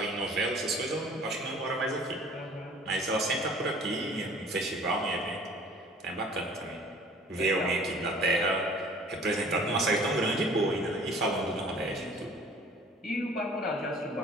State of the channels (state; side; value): normal; both; correlation 0.50